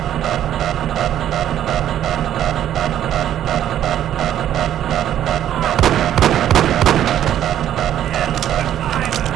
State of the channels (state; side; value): quieter; left; 11.1 dB